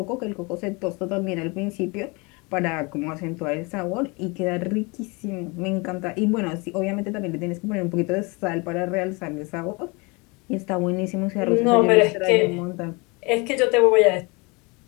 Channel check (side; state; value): right; quieter; 28.2 dB